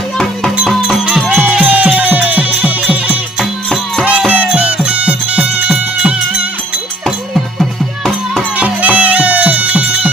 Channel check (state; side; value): normal; both; correlation 0.59